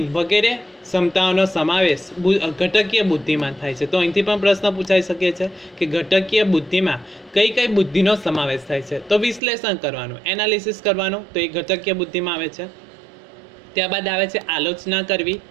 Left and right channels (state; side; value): drops out; left; at 9.4 s